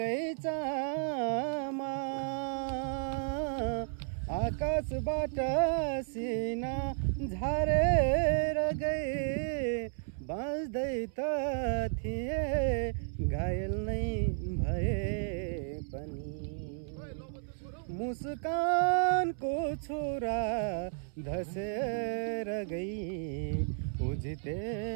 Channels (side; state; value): left; silent; 56 dB below the other